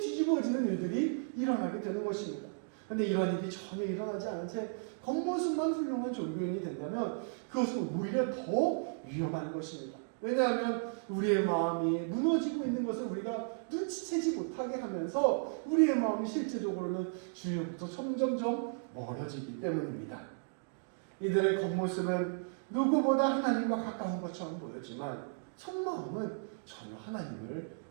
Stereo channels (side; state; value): left; silent; digital silence